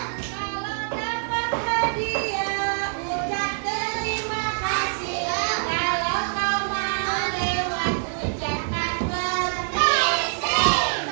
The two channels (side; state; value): left; silent; 62 dB below the other